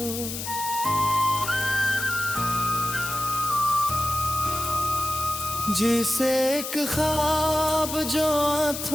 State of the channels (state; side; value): noise; left; hiss, 6 dB below the sound